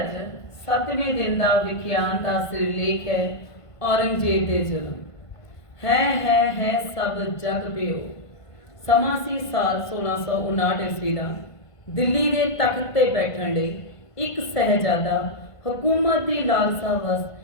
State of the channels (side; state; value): right; late; 1.5 ms